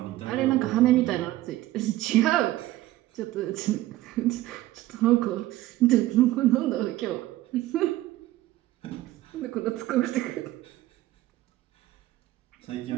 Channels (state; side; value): quieter; left; 16.0 dB